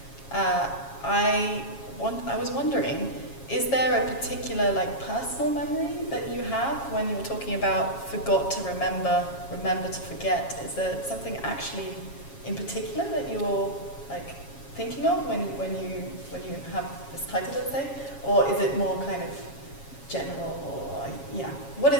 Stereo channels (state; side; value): late; right; 7.3 ms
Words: I was wondering, is there a particular like personal memory that you have when you were talking about forgot to remember to forget? Is there something actually in particular that you're like thinking of when you have this title, let's say, or is it more kind of general, or what